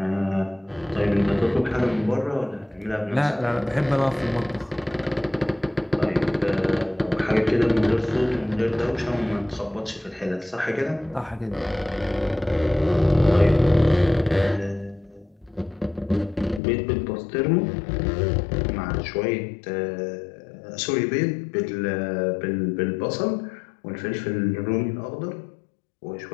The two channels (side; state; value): right; drops out; at 16.6 s